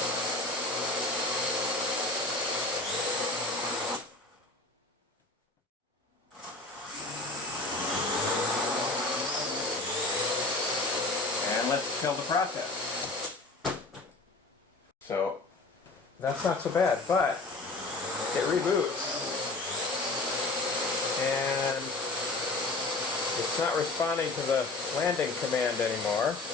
And let's kill the process. So that's not so bad, but it reboots and it's not responding to the landing command anymore.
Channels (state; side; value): quieter; right; 3.2 dB